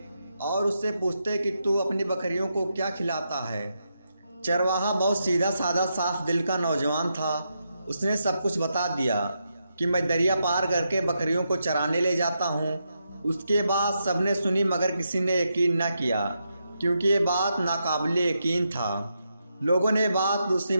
और उससे पूछते कि तू अपनी बकरियों को क्या खिलाता है। चरवाहा बहुत सीधा साधा साफ दिल का नौजवान था। उसने सब कुछ बता दिया कि मैं दरिया पार करके बकरियों को चराने ले जाता हूँ। उसके बाद सबने सुनी मगर किसी ने यकीन न किया क्योंकि ये बात नाकाबिले यकीन था। लोगों ने बात दूसरी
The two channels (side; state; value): both; inverted; correlation -0.83